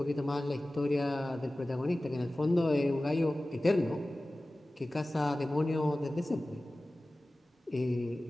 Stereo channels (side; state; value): both; normal; correlation 0.97